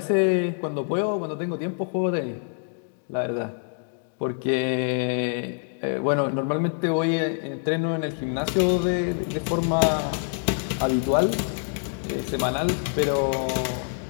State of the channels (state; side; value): silent; right; 61 dB below the other